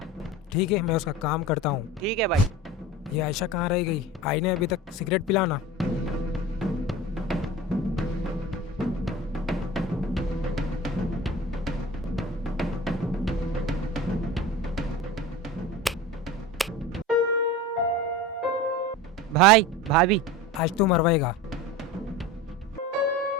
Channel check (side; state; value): both; normal; correlation 0.33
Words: ठीक है, मैं उसका काम करता हूँ। ठीक है भाई। ये आयशा कहाँ रह गई? आई ने अभी तक सिगरेट पिलाना। भाई भाभी। आज तू मरवाएगा।